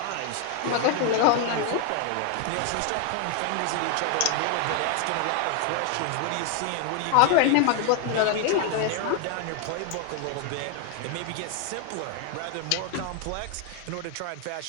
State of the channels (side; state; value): both; different; correlation 0.01